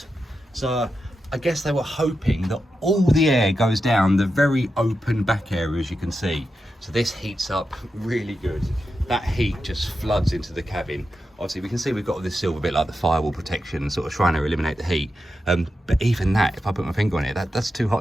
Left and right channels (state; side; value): normal; both; correlation 0.89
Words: So I guess they were hoping that all the air goes down the very open back area, as you can see. So this heats up really good. That heat just floods into the cabin. Obviously we can see we've got all this silver bit like the firewall protection, sort of trying to eliminate the heat. But even that, if I put my finger on it, that's too